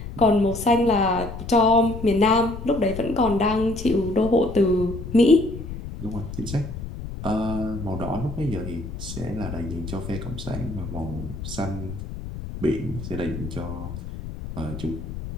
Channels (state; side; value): noise; left; rumble, 9 dB below the sound